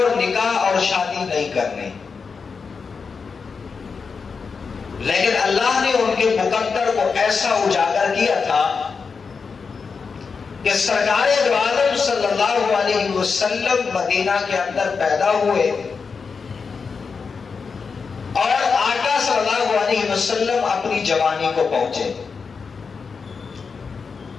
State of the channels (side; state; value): right; quieter; 5.3 dB